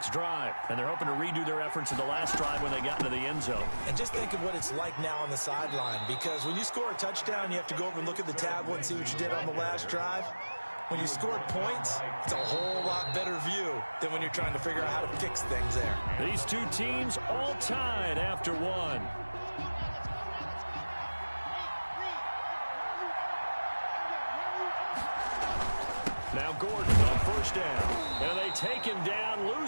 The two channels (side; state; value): both; inverted; correlation -1.00